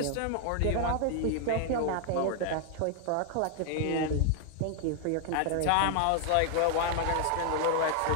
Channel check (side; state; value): both; different; correlation 0.00